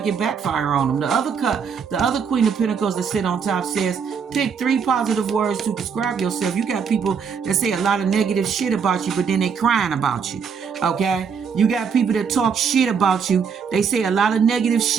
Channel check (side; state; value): left; quieter; 6.4 dB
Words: it backfired on them. The other Queen of Pentacles that sit on top says, pick 3 positive words to describe yourself. You got people that say a lot of negative shit about you, but then they crying about you, okay? You got people that talk shit about you. They say a lot of negative